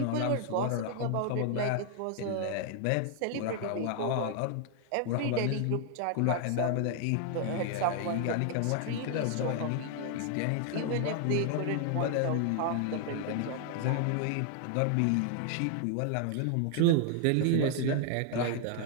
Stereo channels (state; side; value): different; both; correlation 0.00